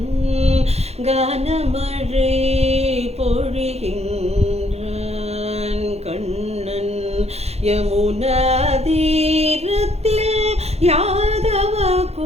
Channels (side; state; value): left; late; 0.31 ms